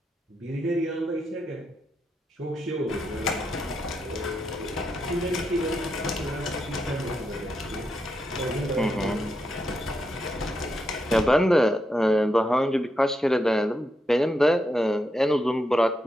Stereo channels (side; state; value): both; normal; correlation 0.83